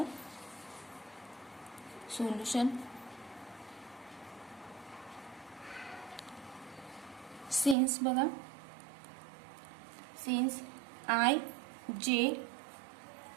Solution since बघा, since I J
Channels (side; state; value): left; drops out; at 7.8 s